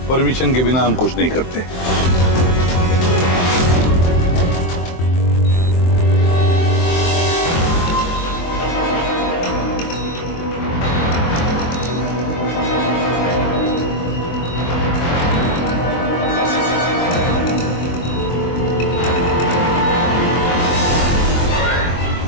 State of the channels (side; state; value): right; late; 23 ms